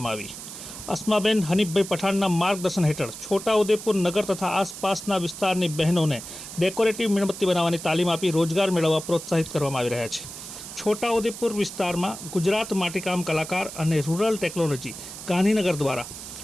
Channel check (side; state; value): right; noise; hiss, 11 dB below the sound